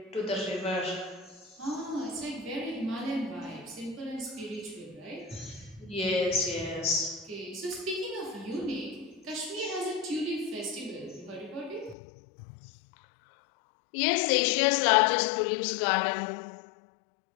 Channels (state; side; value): drops out; right; at 12.0 s